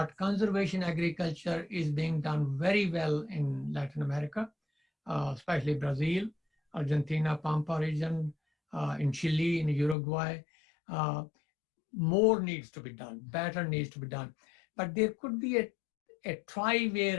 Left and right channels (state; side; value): drops out; right; at 10.0 s